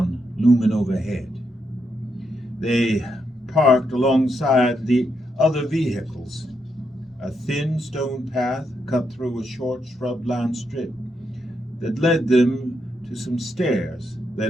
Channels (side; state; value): both; normal; correlation 0.81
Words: looming overhead. They parked alongside the other vehicles. A thin stone path cut through a short shrub-lined strip that led them to some stairs